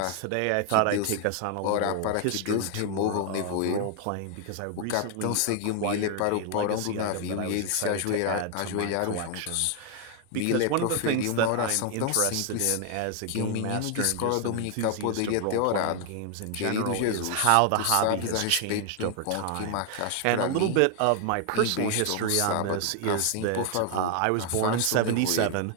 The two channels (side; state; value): both; different; correlation 0.00